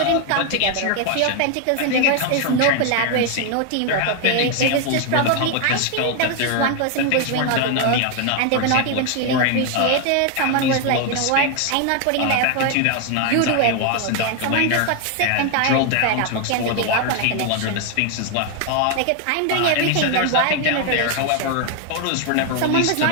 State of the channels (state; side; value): different; both; correlation 0.01